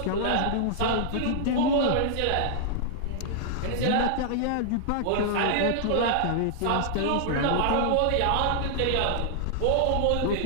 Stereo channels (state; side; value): different; both; correlation -0.01